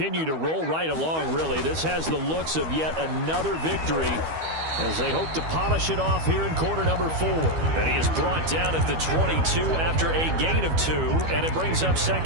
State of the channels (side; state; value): left; late; 12 ms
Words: to roll right along, really. This has the looks of yet another victory as they hope to polish it off here in quarter number 4. And he is brought down at the 22 after a gain of 2, and it brings up